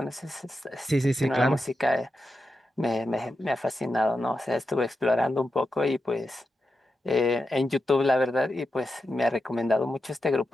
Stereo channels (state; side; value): normal; both; correlation 0.89